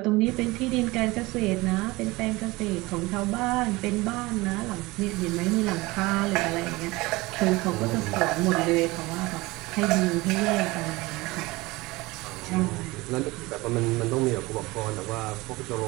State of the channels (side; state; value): left; quieter; 21.7 dB